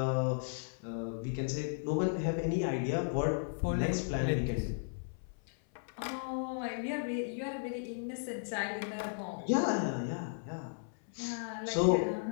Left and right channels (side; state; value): right; silent; 54 dB below the other